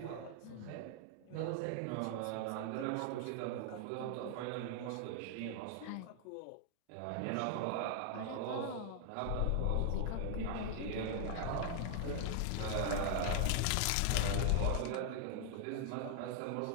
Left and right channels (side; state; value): both; different; correlation -0.01